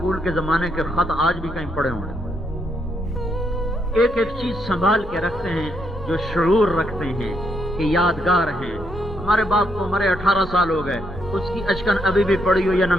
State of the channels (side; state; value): both; normal; correlation 0.76